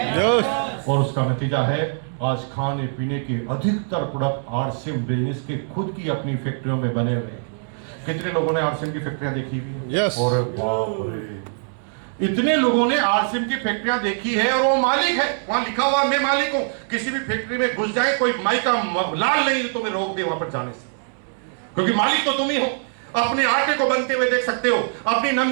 और उसका नतीजा है आज खाने पीने के अधिकतर प्रोडक्ट आरसीएम बिजनेस के खुद की अपनी फैक्ट्रियों में बने हुए हैं। कितने लोगों ने आरसीएम की फैक्ट्रियां देखी हुई है? यस और बाप रे, इतने लोगों ने आरसीएम की फैक्ट्रियां देखी है और वो मालिक है, वहां लिखा हुआ मैं मालिक हूं। किसी भी फैक्ट्री में घुस जाए, कोई माई का लाल नहीं तो मैं रोक दे वहां पर जाने से, क्योंकि मालिक तो तुम ही हो। अपने आटे को बनते हुए देख सकते हो, अपनी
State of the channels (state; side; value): silent; left; 64 dB below the other